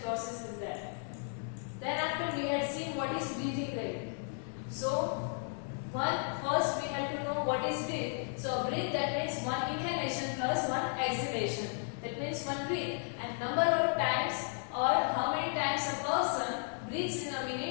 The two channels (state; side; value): silent; right; 55 dB below the other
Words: process is there. Then after we had seen what is breathing rate. So first we had to know what is breath. So breath, that means one inhalation plus one exhalation. That means one breath, and number of times or how many times a person breathes in a